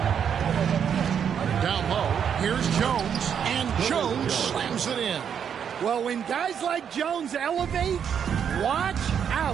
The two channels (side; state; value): left; quieter; 8.0 dB